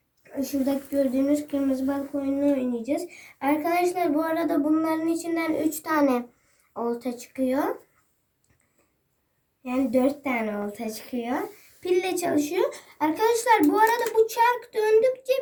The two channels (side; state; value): both; identical; correlation 1.00